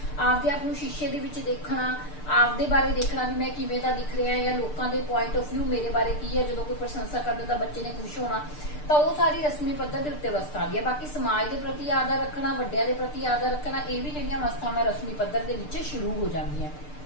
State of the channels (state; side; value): late; right; 6.7 ms